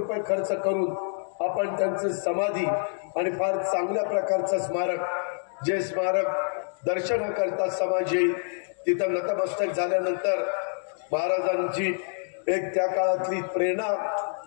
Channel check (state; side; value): silent; right; 60 dB below the other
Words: खर्च करून आपण त्यांचं समाधी आणि फार चांगल्या प्रकारचं स्मारक, जे स्मारक दर्शन करता समाज येईल तिथं नतमस्तक झाल्यानंतर महाराजांची एक त्या काळातली प्रेरणा